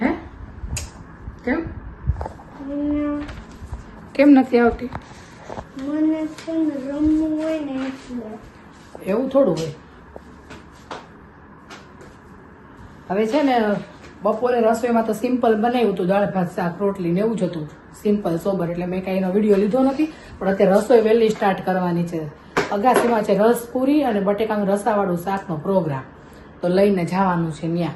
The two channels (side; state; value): both; identical; correlation 1.00